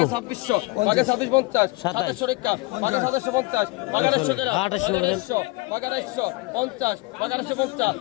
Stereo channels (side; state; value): right; quieter; 23.7 dB